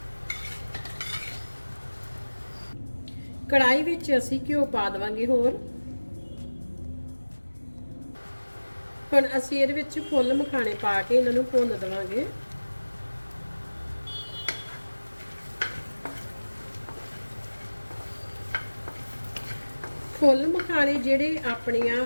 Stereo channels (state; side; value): inverted; both; correlation -1.00